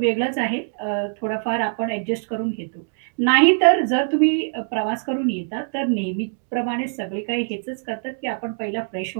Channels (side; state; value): left; silent; 64 dB below the other